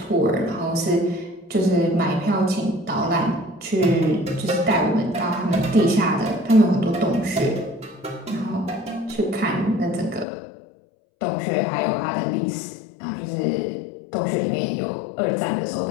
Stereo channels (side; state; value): right; drops out; at 10.2 s